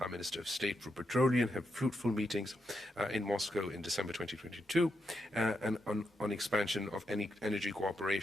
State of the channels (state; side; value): normal; both; correlation 0.83